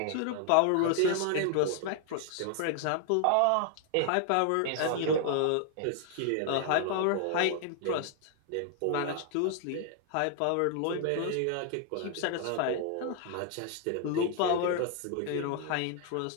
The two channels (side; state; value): both; different; correlation 0.00